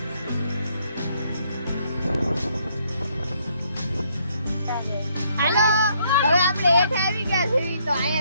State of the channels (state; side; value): inverted; both; correlation -0.70